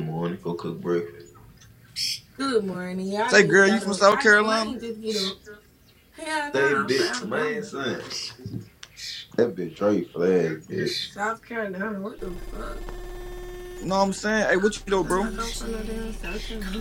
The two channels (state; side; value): identical; both; correlation 1.00